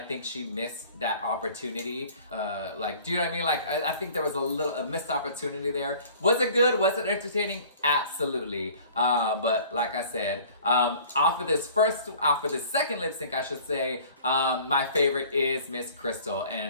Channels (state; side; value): inverted; both; correlation -0.49